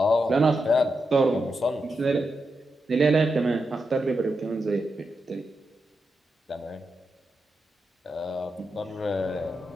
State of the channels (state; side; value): normal; both; correlation 0.86